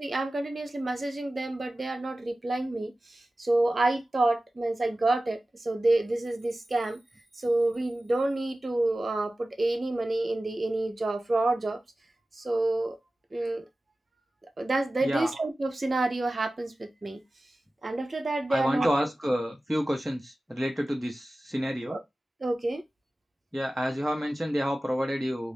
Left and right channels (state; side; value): normal; both; correlation 0.96